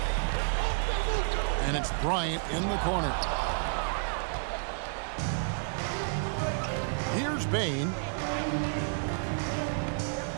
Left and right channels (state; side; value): silent; left; digital silence